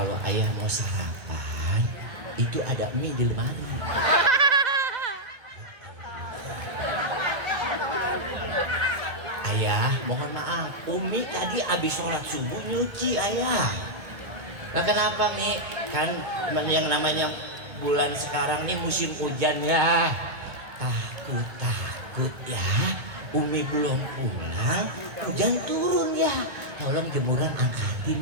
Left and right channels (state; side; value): late; left; 2.2 ms